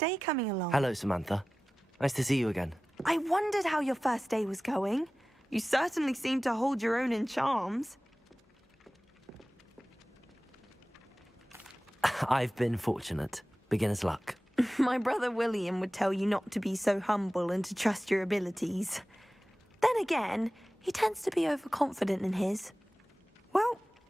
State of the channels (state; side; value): normal; both; correlation 0.96